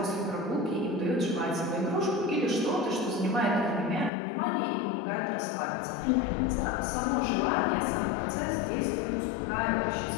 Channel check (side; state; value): right; drops out; at 4.1 s